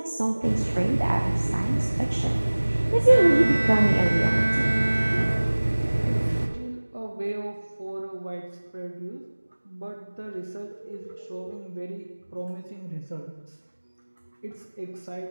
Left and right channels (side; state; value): both; inverted; correlation -1.00